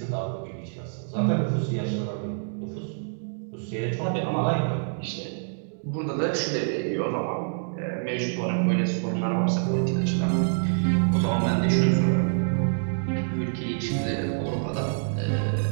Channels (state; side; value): silent; left; digital silence